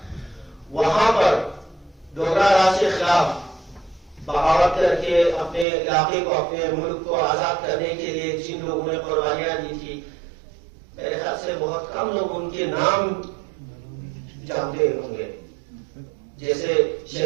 वहां पर डोगरा राज के खिलाफ बगावत करके अपने इलाके को, अपने मुल्क को आजाद करने के लिए जिन लोगों ने कुर्बानियां दी थी, मेरे ख्याल से बहुत कम लोग उनके नाम जानते होंगे. जैसे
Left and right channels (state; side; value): drops out; left; at 5.7 s